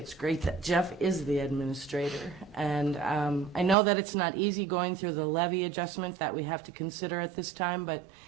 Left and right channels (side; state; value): left; drops out; at 3.8 s